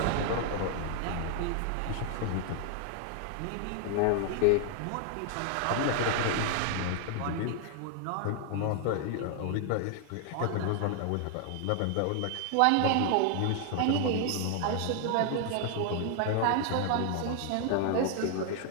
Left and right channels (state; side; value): different; both; correlation 0.00